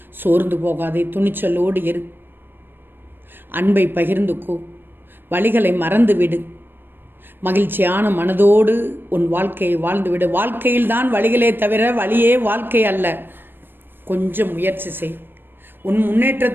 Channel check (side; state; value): left; late; 0.097 ms